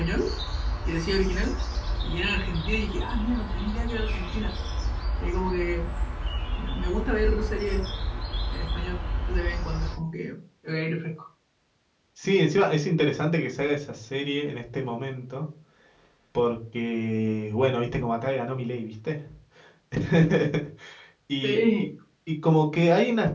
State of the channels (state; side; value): identical; both; correlation 1.00